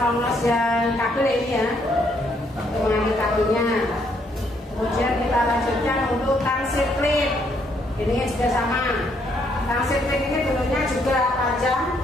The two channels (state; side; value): normal; both; correlation 0.71